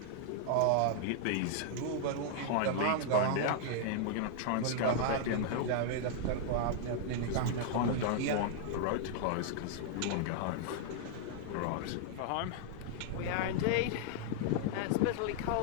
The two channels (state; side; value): different; both; correlation -0.01